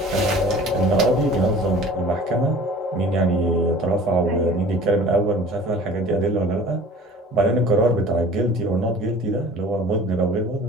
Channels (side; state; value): both; normal; correlation 0.45